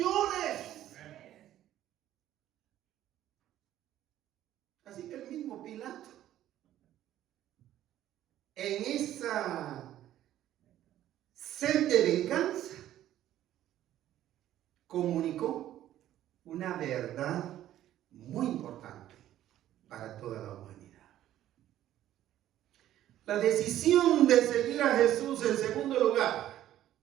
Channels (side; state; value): left; quieter; 12.7 dB